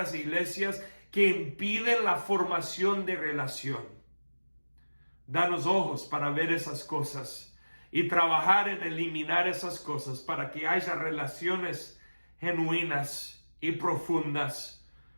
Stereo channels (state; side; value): inverted; both; correlation -1.00